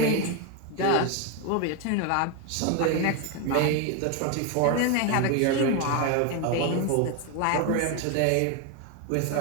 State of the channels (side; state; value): both; different; correlation 0.02